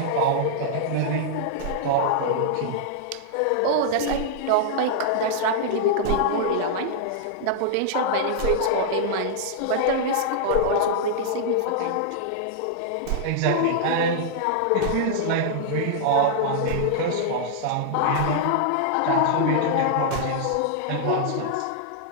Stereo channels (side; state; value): both; different; correlation -0.01